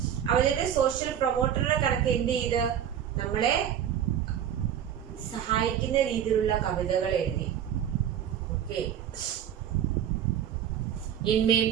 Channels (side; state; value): left; quieter; 9.6 dB